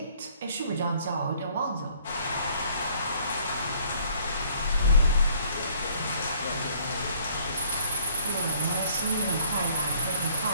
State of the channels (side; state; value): both; inverted; correlation -0.60